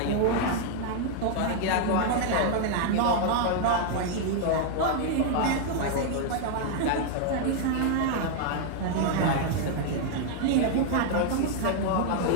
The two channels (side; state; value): both; different; correlation 0.00